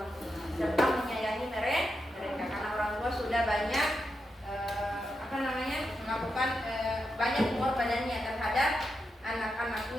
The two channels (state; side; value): normal; both; correlation 0.86